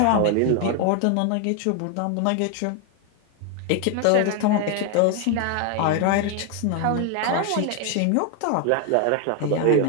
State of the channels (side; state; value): both; different; correlation 0.01